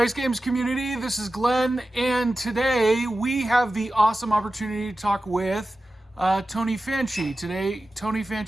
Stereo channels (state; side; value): normal; both; correlation 0.94